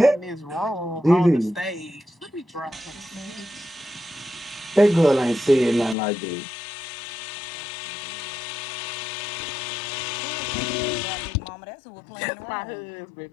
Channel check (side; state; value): right; drops out; at 6.0 s